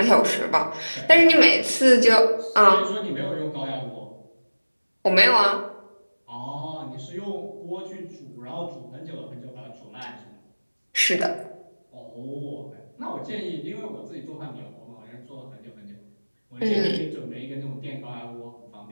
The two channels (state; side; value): inverted; both; correlation -1.00